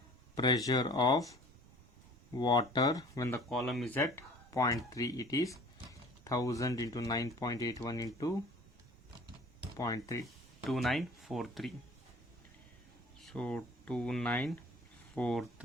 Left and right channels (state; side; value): normal; both; correlation 0.48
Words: pressure of water when the column is at 0.3. It is 1000 into 9.81 into 0.3. 2943. So